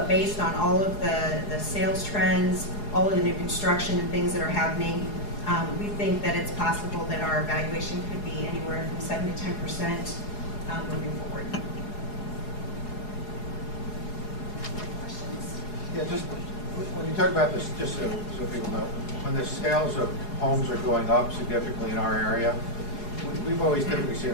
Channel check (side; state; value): right; late; 4.8 ms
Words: based on all of the sales trends, all of the new construction and things that are happening, we think that it's possible that our valuation could be anywhere from 7 to 10% moving forward. Questions? Yeah, just when you talk about this, just so people know, when the sales of homes are going up significantly in our area, we've always typically seen